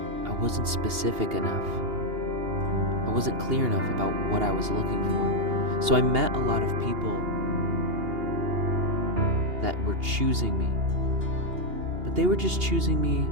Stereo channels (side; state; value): left; late; 2.8 ms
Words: I wasn't specific enough. I wasn't clear enough about what I was looking for. So I met a lot of people that were choosing me, but they were just choosing me